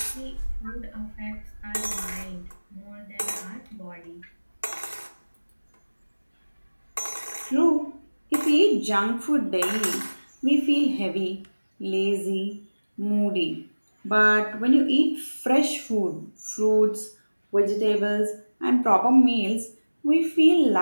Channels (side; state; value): both; inverted; correlation -1.00